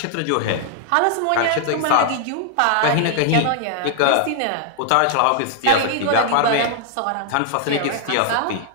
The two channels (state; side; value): different; both; correlation 0.00